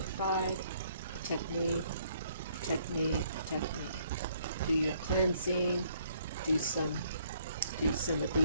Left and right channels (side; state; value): both; inverted; correlation -0.66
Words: Protect me. Protect me. Protect me. Do your cleansing. Do some of